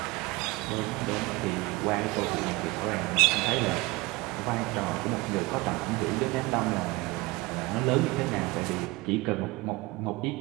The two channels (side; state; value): left; quieter; 22.6 dB